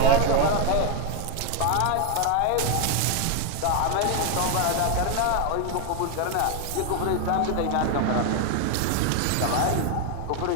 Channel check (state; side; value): different; both; correlation 0.01